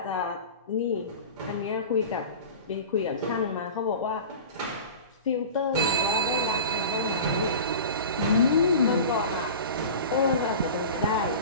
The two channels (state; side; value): inverted; both; correlation -0.36